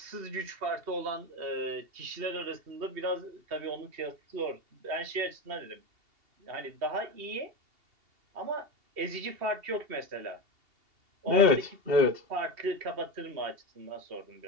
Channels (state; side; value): late; left; 2.8 ms